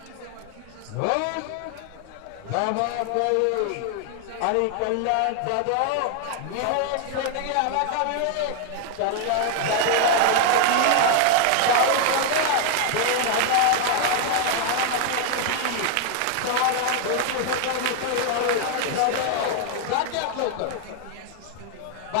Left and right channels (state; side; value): different; both; correlation 0.00